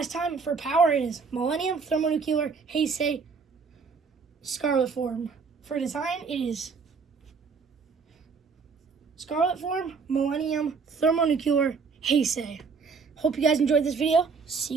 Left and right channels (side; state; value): left; quieter; 5.1 dB